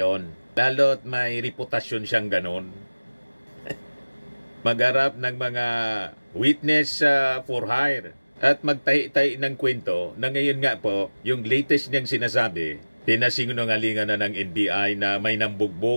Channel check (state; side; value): inverted; both; correlation -1.00